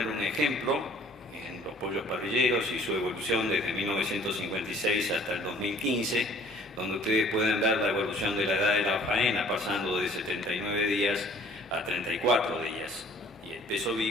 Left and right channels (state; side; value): normal; both; correlation 0.54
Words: un ejemplo en los pollos parrilleros y su evolución desde 1956 hasta el 2015, donde ustedes pueden ver la evolución de la edad de la faena, pasando de 79 días a 34 días. Peso